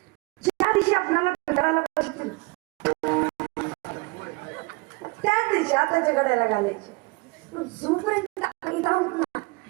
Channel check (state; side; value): quieter; left; 26.2 dB